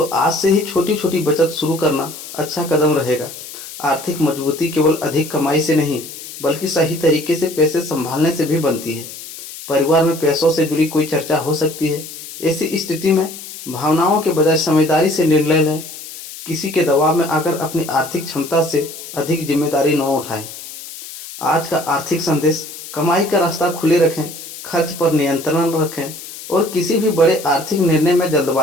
आज से ही छोटी छोटी बचत शुरू करना अच्छा कदम रहेगा। आर्थिक मजबूती केवल अधिक कमाई से नहीं, बल्कि सही तरीके से पैसे संभालने से भी बनती है। परिवार में पैसों से जुड़ी कोई चर्चा हो सकती है। ऐसी स्थिति में भावनाओं के बजाय समझदारी से निर्णय लें। किसी के दबाव में आकर अपनी आर्थिक क्षमता से अधिक जिम्मेदारी न उठाएं। आज का आर्थिक संदेश: कमाई का रास्ता खुले रखें, खर्च पर नियंत्रण रखें और किसी भी बड़े आर्थिक निर्णय में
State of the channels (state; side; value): noise; left; hiss, 13 dB below the sound